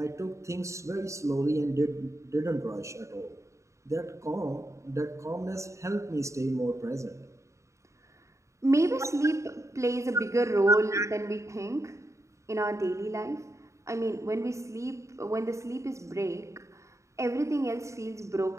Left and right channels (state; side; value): late; left; 0.14 ms